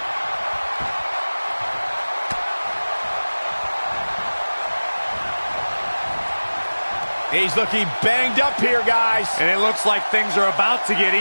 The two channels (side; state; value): both; inverted; correlation -1.00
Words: He's looking banged up here, guys. And it looks like things are about to get